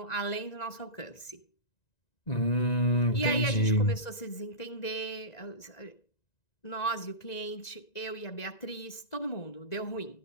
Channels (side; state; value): right; late; 1.9 ms